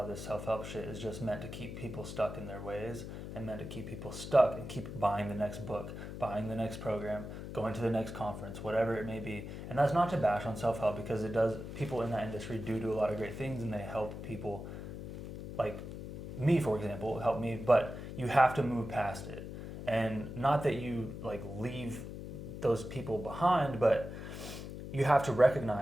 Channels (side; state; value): left; noise; hum, 9 dB below the sound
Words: of this self-help shit is just meant to keep people stuck in their ways and meant to keep people stuck and keep buying the next book, buying the next program, going to the next conference, whatever it may be. And that's not to bash on self-help, because it does, people in that industry do a lot of great things and they help people, like me, for example, help me, but you have to move past it. And not that you like leave those people behind, but you have to